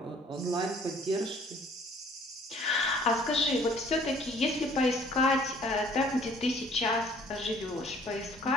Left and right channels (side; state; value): both; normal; correlation 0.56